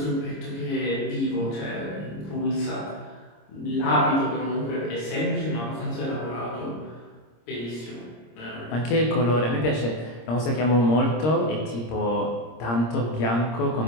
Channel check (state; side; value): late; right; 26 ms